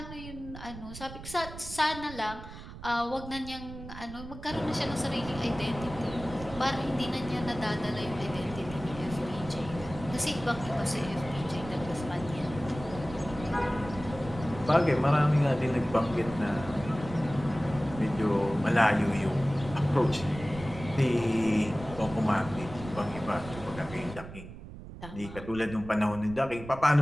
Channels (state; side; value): noise; right; rumble, 13 dB below the sound